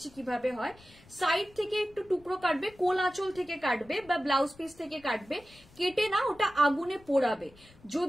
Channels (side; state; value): left; noise; rumble, 26 dB below the sound